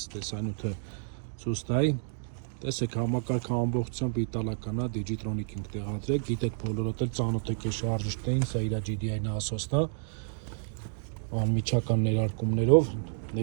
տեսանյութը ցույց տայի. Տեսեք համակարգը ամբողջությամբ իտալական է, Digitronic ենք տեղադրել, գիտեք բոլորդ էլ ծանոթ եք այս շարժիչներին, սա իր GDI насոսն է, անմիջական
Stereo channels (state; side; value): silent; left; 58 dB below the other